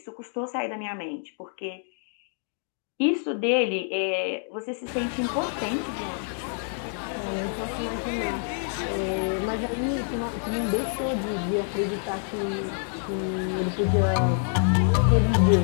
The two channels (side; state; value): right; silent; 60 dB below the other